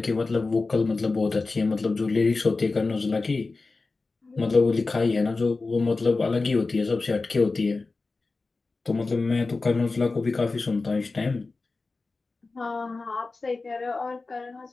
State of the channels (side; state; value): right; quieter; 3.7 dB